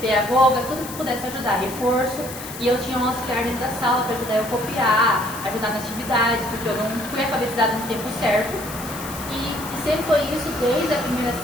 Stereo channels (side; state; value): left; noise; hiss, 12 dB below the sound